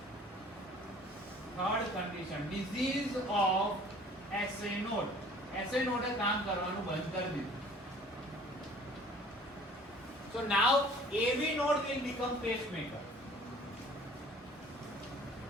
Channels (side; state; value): both; normal; correlation 0.51